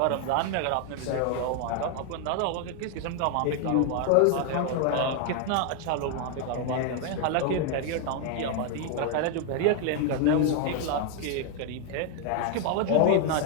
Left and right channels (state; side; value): different; both; correlation 0.00